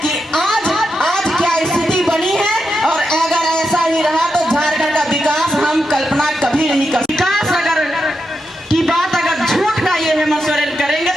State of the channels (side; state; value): both; normal; correlation 0.85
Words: कि आज क्या स्थिति बनी है, और अगर ऐसा ही रहा तो झारखंड का विकास हम कल्पना कभी नहीं कर। विकास अगर की बात अगर झूठ का ये हेमंत सोरेन करेंगे